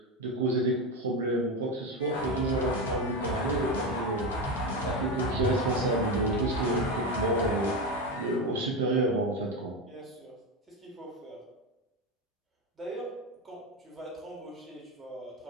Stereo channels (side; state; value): both; normal; correlation 0.15